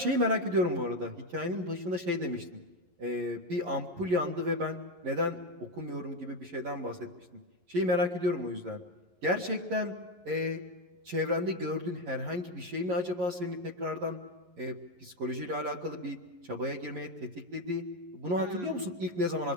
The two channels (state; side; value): late; left; 11 ms